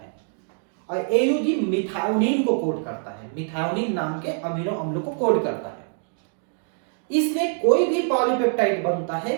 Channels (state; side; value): silent; left; 57 dB below the other